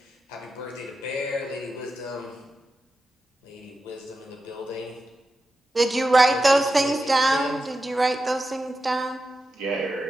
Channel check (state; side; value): normal; both; correlation 0.91